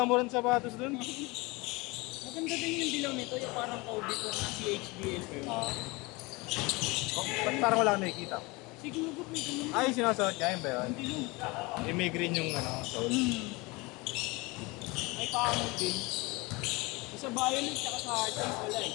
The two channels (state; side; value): quieter; right; 24.8 dB